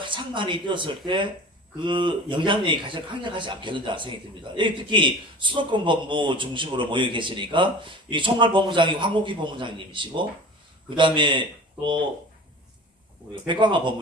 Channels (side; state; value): both; normal; correlation 0.39